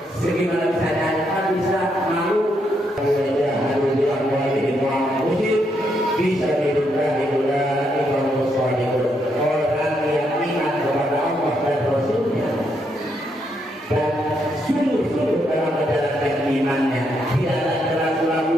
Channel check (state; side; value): normal; both; correlation 0.77